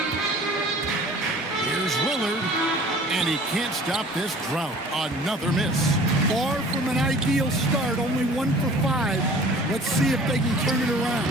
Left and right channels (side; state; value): both; normal; correlation 0.47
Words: Here's Lillard, and he can't stop this drought. Another miss. Far from an ideal start, only 1 for 5. Let's see if they can turn it around.